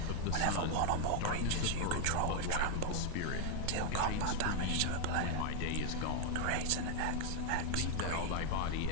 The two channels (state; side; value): different; both; correlation 0.00